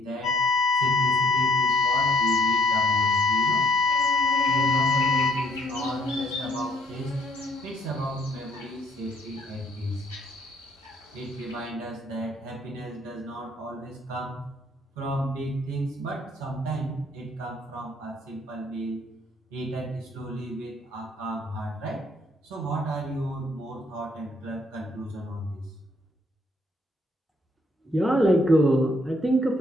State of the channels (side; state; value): both; normal; correlation 0.65